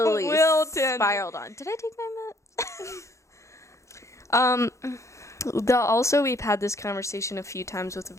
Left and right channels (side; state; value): right; late; 0.14 ms